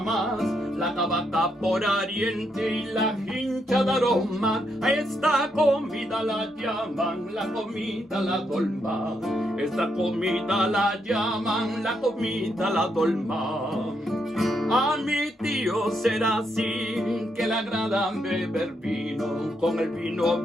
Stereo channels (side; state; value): both; normal; correlation 0.78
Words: la tabaca por Oriente y la hincha de aroma. A esta comida la llaman la comida la dolma. Esta comida la llaman la comida la dolma. A mi tío será así, que le agrada beber vino. Con el vino,